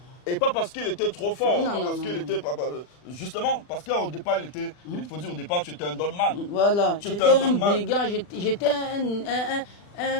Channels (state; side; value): late; right; 40 ms